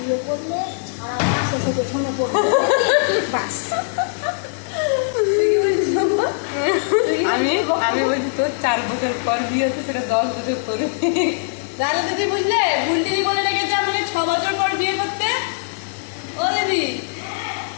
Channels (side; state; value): right; silent; 65 dB below the other